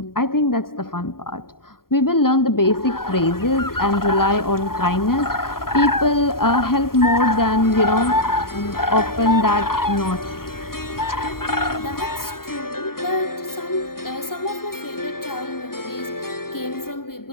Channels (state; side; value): late; right; 0.92 ms